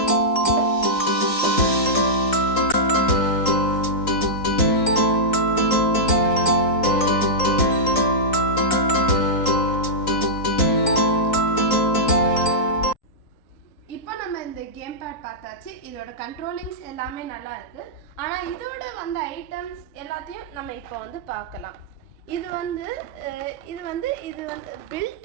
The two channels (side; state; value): right; late; 3.9 ms